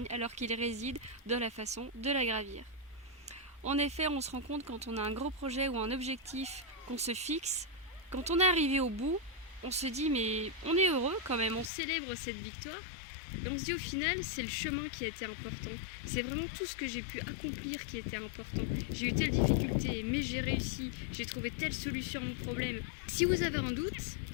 alors qu'il réside dans la façon de la gravir. En effet, on se rend compte quand on a un gros projet ou un objectif qu'on se fixe, quand on est arrivé au bout, on se dit mais on est heureux quand même, on célèbre cette victoire. Et on se dit au final, c'est le chemin qui a été important. C'est vraiment tout ce que j'ai pu accomplir qui était important. J'ai eu telle difficulté, mais j'ai réussi. J'ai trouvé telle solution à mon problème. Si vous avez un doute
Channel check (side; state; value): right; drops out; at 11.7 s